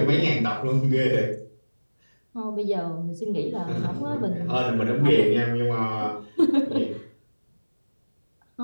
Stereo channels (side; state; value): both; inverted; correlation -1.00